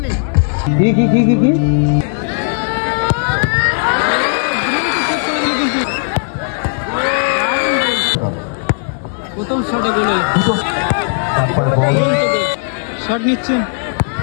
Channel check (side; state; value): right; silent; 69 dB below the other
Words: কি প্রথম শটে গোল শট নিচ্ছেন